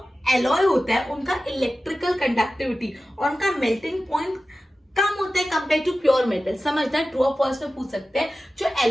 एलॉय होता है उनका इलेक्ट्रिकल कंडक्टिविटी और उनका मेल्टिंग पॉइंट कम होता है कंपेयर टू प्योर मेटल। समझना, ट्रू और फॉल्स में पूछ सकते हैं। जो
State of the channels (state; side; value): normal; both; correlation 0.95